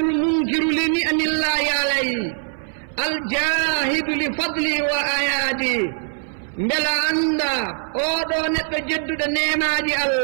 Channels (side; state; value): left; silent; 61 dB below the other